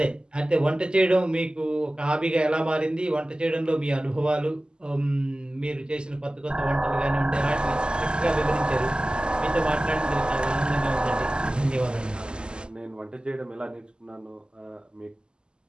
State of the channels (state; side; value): late; left; 0.048 ms